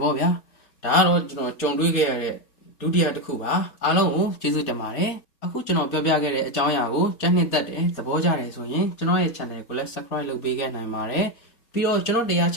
ဗောဗျာဒါကတော့ကျွန်တော်ကြုံတွေ့ခဲ့ရတဲ့ဒုတိယတစ်ခုပါအားလုံးကိုကျေးဇူးတင်ပါတယ်အခုကျွန်တော်ပြောပြခဲ့တဲ့အကြောင်းအရာကိုကြိုက်နှစ်သက်တယ်သဘောကျတယ်ဆိုရင်ကျွန်တော်ရဲ့ channel ကိုလည်း subscribe လုပ်ပေးခဲ့နိုင်ပါတယ်ပြီးတော့ကျွန်တော်တရား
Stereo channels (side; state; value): right; late; 4.3 ms